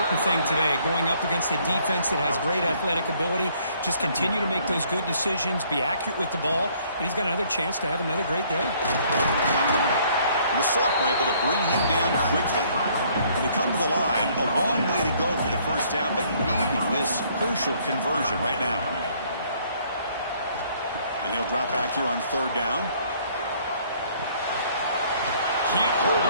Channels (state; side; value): inverted; both; correlation -0.62